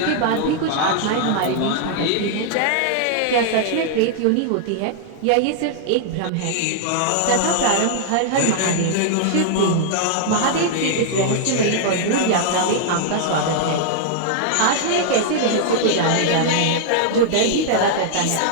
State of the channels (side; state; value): both; different; correlation -0.01